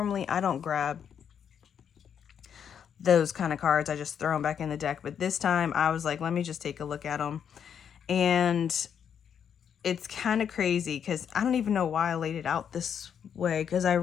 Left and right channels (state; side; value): quieter; right; 8.0 dB